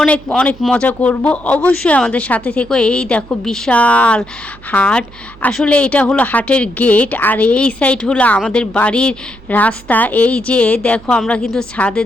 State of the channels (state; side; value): noise; right; hum, 22 dB below the sound